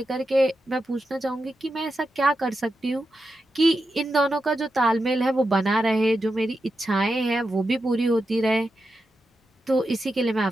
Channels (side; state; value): both; normal; correlation 0.89